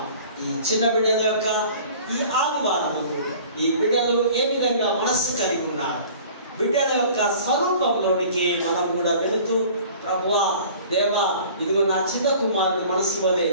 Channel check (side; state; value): both; inverted; correlation -0.47